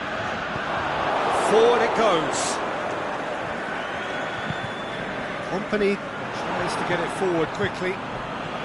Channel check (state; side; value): identical; both; correlation 1.00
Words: Forward it goes. Company tries to get it forward quickly.